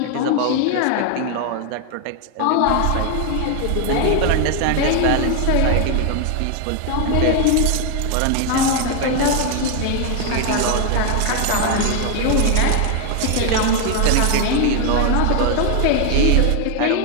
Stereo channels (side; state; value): both; different; correlation 0.01